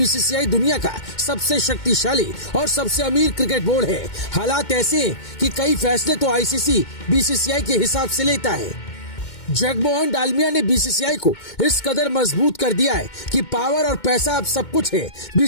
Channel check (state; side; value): late; right; 2.2 ms